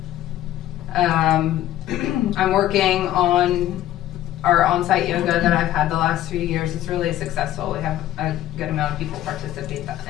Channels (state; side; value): quieter; right; 13.3 dB